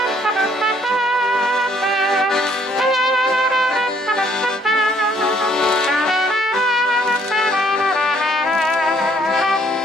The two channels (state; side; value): normal; both; correlation 0.64